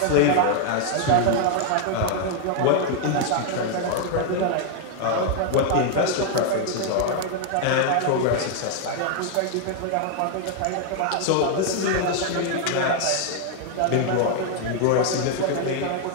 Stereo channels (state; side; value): different; both; correlation 0.00